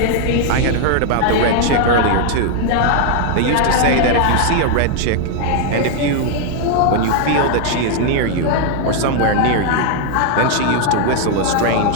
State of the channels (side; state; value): both; different; correlation 0.00